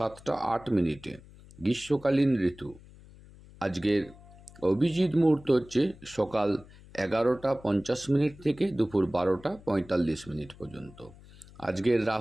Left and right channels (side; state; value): left; noise; hum, 22 dB below the sound